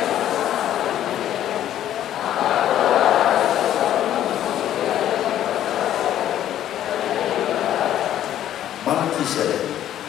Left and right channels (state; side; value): quieter; right; 11.6 dB